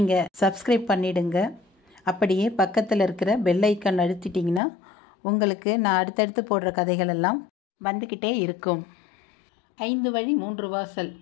சப்ஸ்கிரைப் பண்ணிவிடுங்க. அப்படியே பக்கத்தில் இருக்கிற பெல் ஐக்கான் அழுத்திட்டிங்கன்னா உங்களுக்கு நான் அடுத்தடுத்து போடுற கதைகள் எல்லாம் வந்துக்கிட்டே இருக்கும். 5 வழி 3 வாசல்.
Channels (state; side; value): drops out; right; at 4.6 s